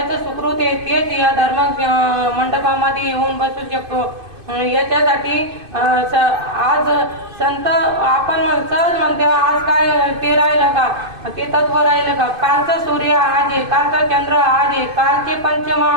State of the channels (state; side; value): late; left; 2.5 ms